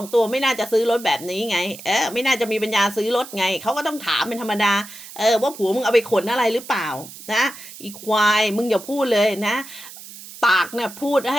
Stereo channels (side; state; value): right; noise; hiss, 15 dB below the sound